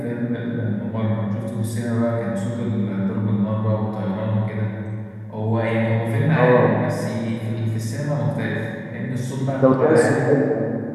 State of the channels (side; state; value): both; identical; correlation 1.00